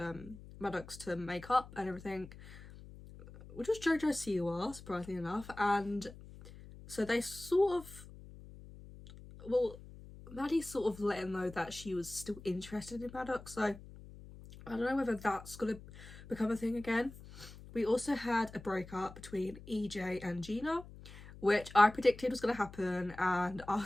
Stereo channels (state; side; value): noise; left; hum, 17 dB below the sound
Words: Maddox to make up and everything, which was JoJo's CUR, surprisingly enough. And so they Maddie sort of let him know that she was still interested in Maddox, so I don't know whether that's gonna become a thing again. We also had a breakup between EJ and Gina, which I predicted was gonna happen, and I